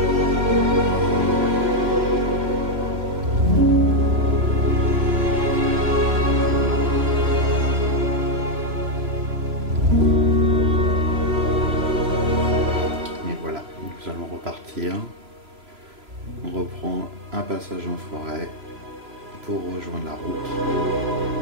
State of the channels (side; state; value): left; late; 3.0 ms